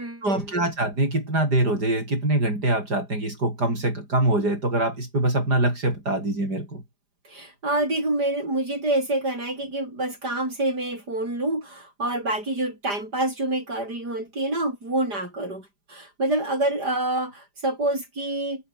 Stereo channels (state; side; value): late; left; 5.0 ms